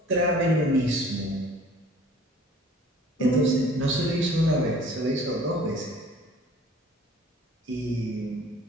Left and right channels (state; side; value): normal; both; correlation 0.50